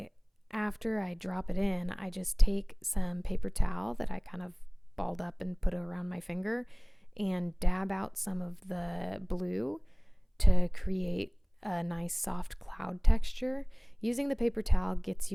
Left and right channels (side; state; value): both; identical; correlation 1.00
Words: I drop it in, I just take some paper towel that I kind of balled up and put around my finger and dab out some of the blue to create a nice soft cloud texture. Using the paper towel gets